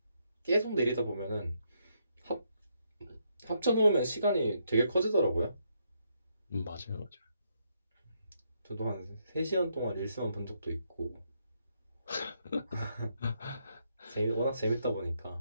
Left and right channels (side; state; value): both; inverted; correlation -0.77